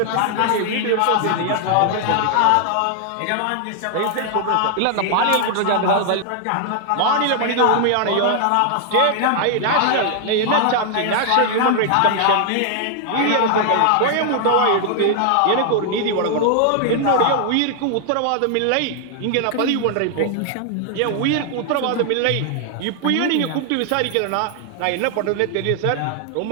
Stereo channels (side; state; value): both; different; correlation 0.00